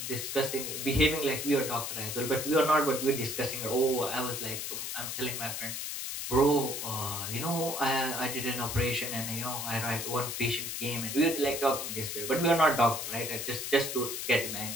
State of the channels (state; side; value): noise; left; hiss, 4 dB below the sound